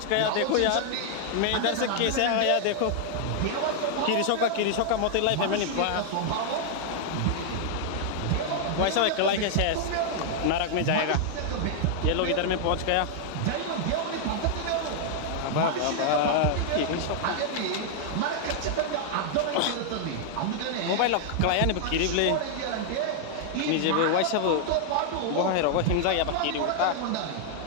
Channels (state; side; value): different; both; correlation -0.01